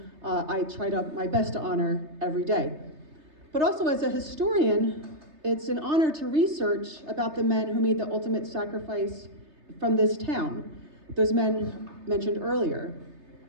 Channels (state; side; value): late; left; 3.3 ms